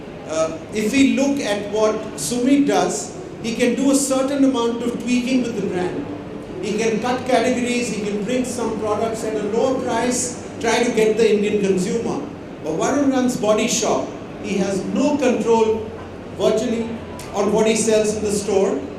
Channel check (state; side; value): identical; both; correlation 1.00